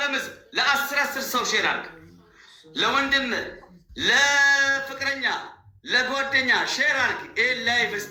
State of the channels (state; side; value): identical; both; correlation 1.00